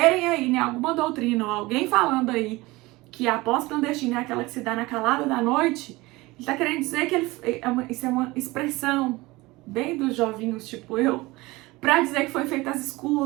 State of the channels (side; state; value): left; quieter; 21.2 dB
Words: aí, né, alguma doutrina ou alguém falando aí que a posse clandestina é aquela que se dá na calada da noite, ele tá querendo dizer que isso é uma expressão bem dos jovinhos tipo eu, pra dizer que foi feita às